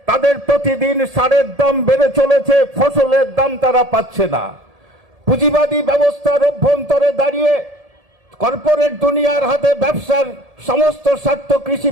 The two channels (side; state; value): left; late; 1.7 ms